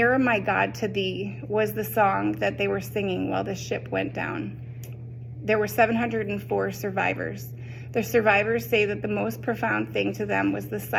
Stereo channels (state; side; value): identical; both; correlation 1.00